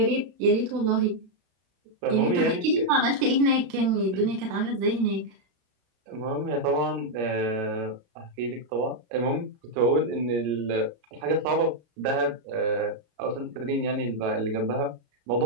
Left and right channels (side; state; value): left; late; 34 ms